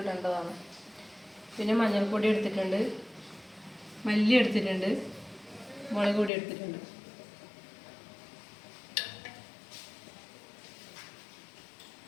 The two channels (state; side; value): drops out; right; at 6.3 s